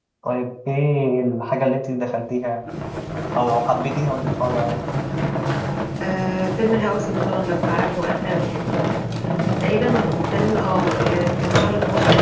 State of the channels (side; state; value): both; identical; correlation 1.00